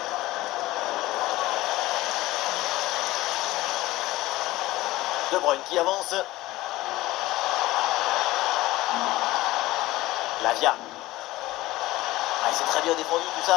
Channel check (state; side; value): quieter; right; 18.0 dB